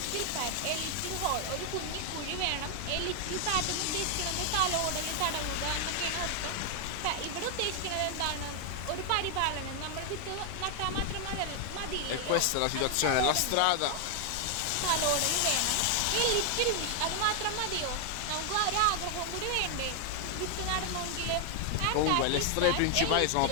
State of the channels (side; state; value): both; different; correlation 0.00